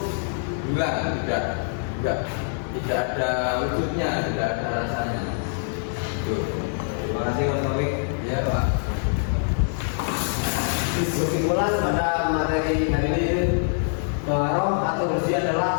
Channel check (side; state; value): right; silent; digital silence